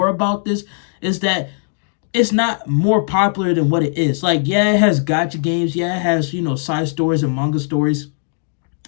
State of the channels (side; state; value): right; silent; digital silence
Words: about this is that it's not more popular than what it is. Like, yeah, it has gotcha games. Yeah, it has side stories and manga stories.